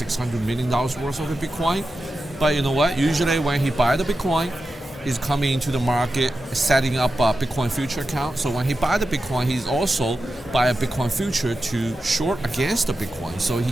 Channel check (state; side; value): normal; both; correlation 0.91